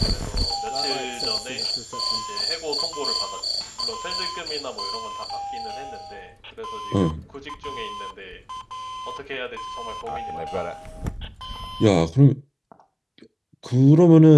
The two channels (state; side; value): identical; both; correlation 1.00